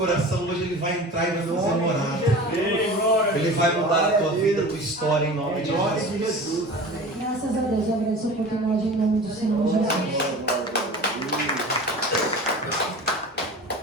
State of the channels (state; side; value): normal; both; correlation 0.36